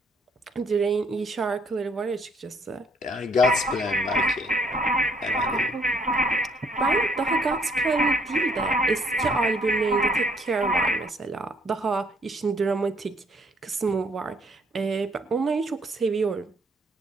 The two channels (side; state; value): both; normal; correlation 0.65